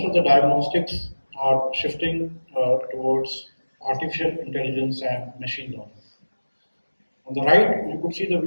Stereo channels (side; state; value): both; inverted; correlation -1.00